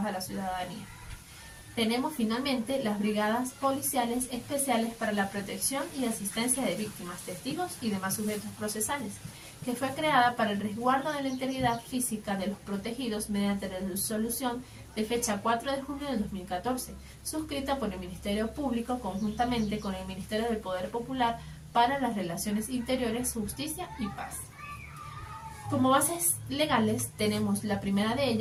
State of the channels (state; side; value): identical; both; correlation 1.00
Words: a la ciudadanía. Tenemos finalmente las brigadas policiales especiales para la protección y asistencia de víctimas, testigos y demás sujetos procesales, que fue creada para el resguardo de la integridad física de los protegidos mediante la resolución de fecha 4 de junio de 2014, suscrita por el Ministerio Público conjuntamente con el Ministerio del Poder Popular para las Relaciones Interiores, Justicia y Paz. Como bases legales tenemos la primera de